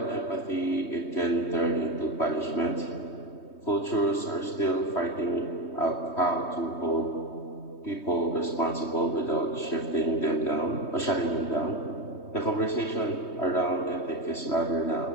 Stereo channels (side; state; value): right; late; 3.2 ms